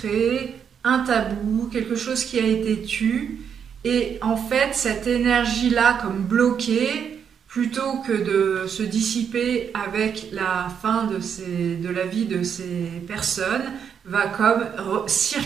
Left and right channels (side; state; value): left; quieter; 7.6 dB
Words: un tabou, quelque chose qui a été tu, et en fait cette énergie-là comme bloquée, plutôt que de se dissiper avec la fin de la vie de ces personnes, va comme